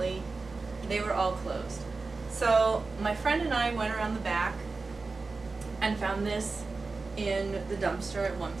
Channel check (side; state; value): left; quieter; 3.9 dB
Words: they were all closed. So my friend and I went around the back and found this in the dumpster at one